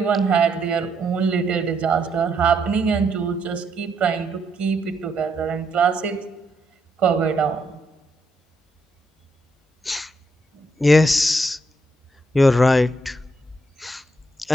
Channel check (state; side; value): normal; both; correlation 0.77